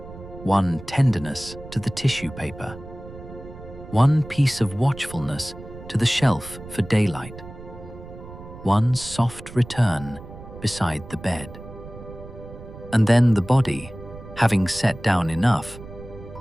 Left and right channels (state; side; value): noise; right; rumble, 15 dB below the sound